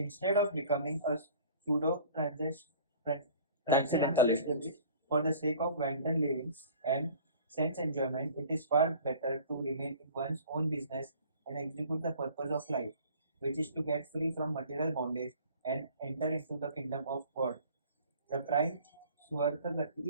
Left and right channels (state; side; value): inverted; both; correlation -0.48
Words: of becoming a pseudo transcendentalist for the sake of wanton living and sense enjoyment, it is far better to remain in one's own business and execute the purpose of life, which is to get free from material bondage and enter into the kingdom of God. The prime